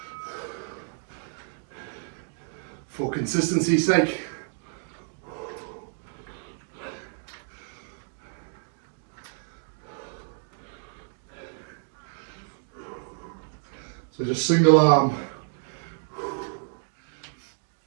For consistency's sake. So just single arm.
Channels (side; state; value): left; silent; digital silence